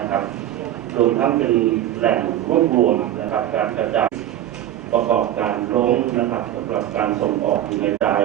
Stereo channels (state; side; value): quieter; left; 12.3 dB